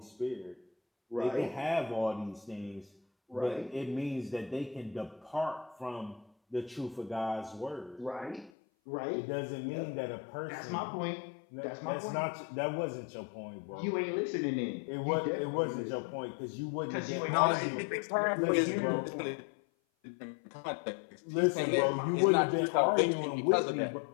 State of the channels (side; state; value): right; drops out; at 8.5 s